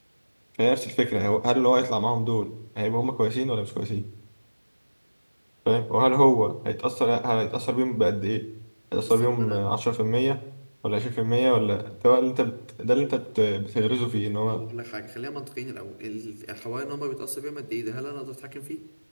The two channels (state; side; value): inverted; both; correlation -1.00